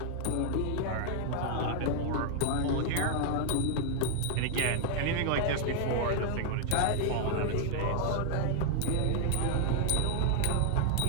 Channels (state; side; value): different; both; correlation 0.00